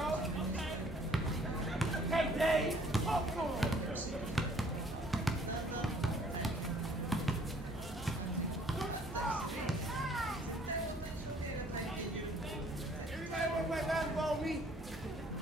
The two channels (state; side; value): normal; both; correlation 0.59